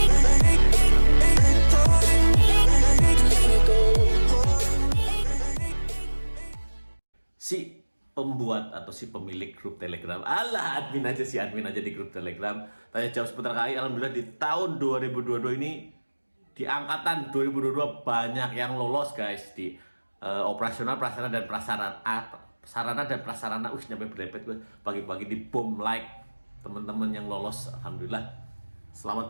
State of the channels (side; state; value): both; inverted; correlation -1.00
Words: Si pembuat atau si pemilik grup Telegram, admin aja di grup Telegram, tanya jawab seputar KAI. Alhamdulillah di tahun 2022 ini, di angkatan 2022 banyak yang lolos guys di operasional, prasarana dan prasarana, sarana dan prasarana. Nyampe berepet gue pagi-pagi di bom like teman-teman yang lolos. Alhamdulillah, selamat